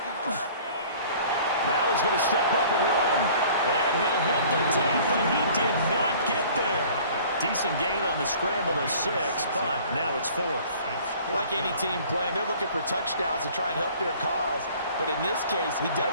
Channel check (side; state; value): both; inverted; correlation -0.50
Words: Now he's going to step up and run. And he'll hit the tape, but he did not get there. Decent gain on the scramble of 6, but now it's 4th. Like any team playing, they're looking for touchdowns to try and help their cause. But in this case, he does